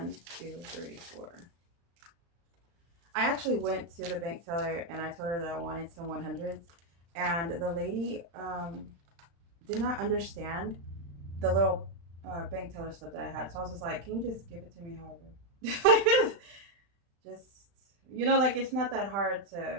2, 3, 4. I actually went to the bank teller and I told her that I wanted some 100s, and the lady did not understand the little bank teller slip that I had. So I was just like, "Can you just give it to me, however?" just like it's not that hard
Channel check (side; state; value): left; late; 35 ms